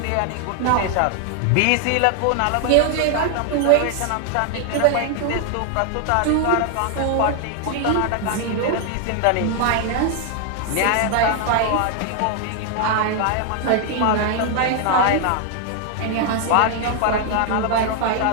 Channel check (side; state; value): both; different; correlation 0.00